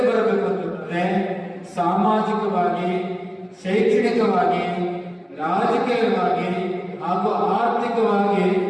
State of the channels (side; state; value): both; identical; correlation 1.00